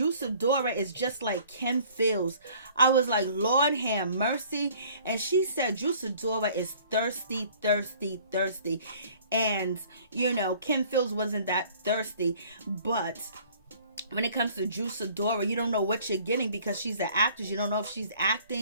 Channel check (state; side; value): inverted; both; correlation -0.53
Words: Sidora is just like Kim Fields. I was like, Lord have mercy. And she said Drew Sidora is thirsty, thirsty, thirsty. And, you know, Kim Fields wasn't that thirsty. But when it comes to Drew Sidora, you don't know what you're getting because she's an actress. You don't know if she's